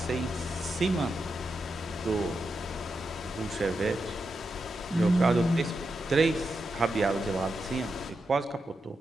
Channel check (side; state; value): both; normal; correlation 0.87